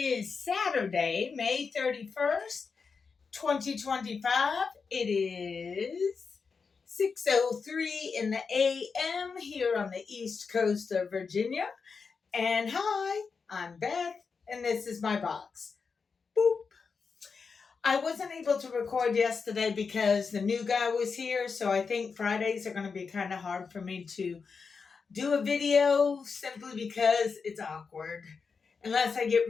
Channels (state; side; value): quieter; right; 5.2 dB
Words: Saturday, May 31st, 2025. It is 6:03 in the AM here on the East Coast of Virginia. And hi, I'm Beth, and this is my box. Boop. I wasn't able to record yesterday because the new guy was here, so I think Fridays are going to be kind of hard for me to do a video simply because it's awkward unless I get